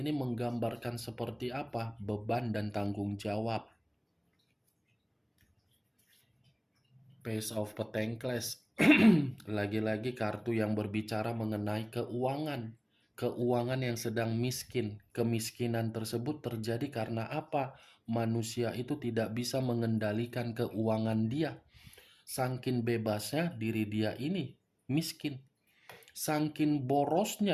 menggambarkan seperti apa? Beban dan tanggung jawab. Page of Pentacles. Lagi-lagi kartu yang berbicara mengenai keuangan. Keuangan yang sedang miskin. Kemiskinan tersebut terjadi karena apa? Manusia itu tidak bisa mengendalikan keuangan dia. Saking bebasnya diri dia ini miskin. Saking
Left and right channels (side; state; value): both; identical; correlation 1.00